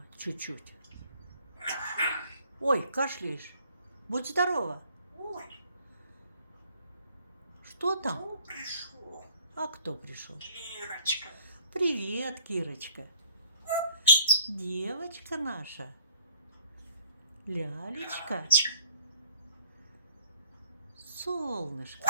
Чуть-чуть. Ой, кашляешь. Будь здорова. Ой, Что там? кто пришел? А кто пришел? Кирочка. Привет, Кирочка. Девочка наша. Лялечка. Солнышко.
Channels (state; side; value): inverted; both; correlation -0.56